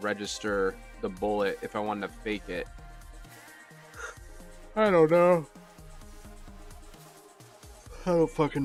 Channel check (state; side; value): identical; both; correlation 1.00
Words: the bullet if I wanted to fake it. I don't know. I don't